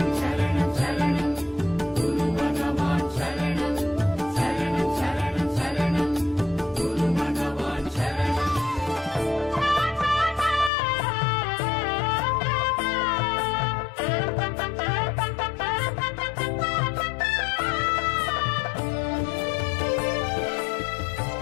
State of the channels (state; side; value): drops out; right; at 10.7 s